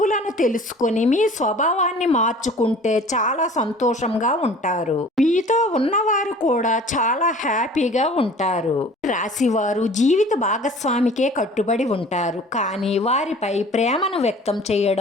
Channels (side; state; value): both; normal; correlation 0.47